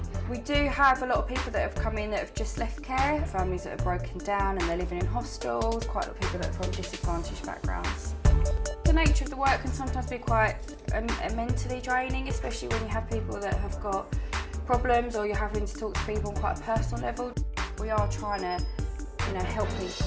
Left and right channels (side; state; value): both; identical; correlation 1.00